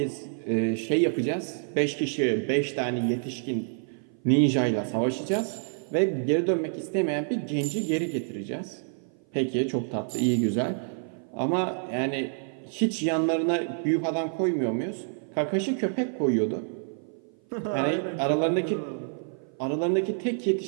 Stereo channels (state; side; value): silent; left; 56 dB below the other